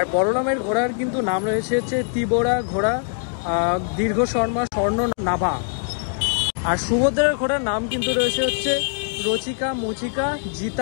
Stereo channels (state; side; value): silent; right; digital silence